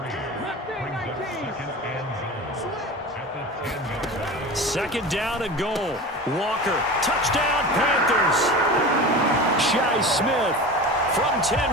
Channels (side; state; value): both; normal; correlation 0.32